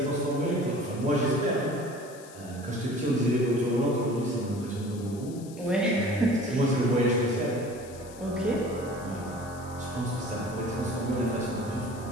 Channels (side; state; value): left; noise; hiss, 20 dB below the sound